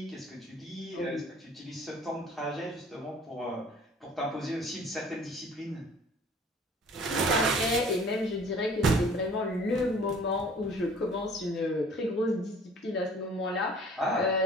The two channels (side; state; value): both; normal; correlation 0.51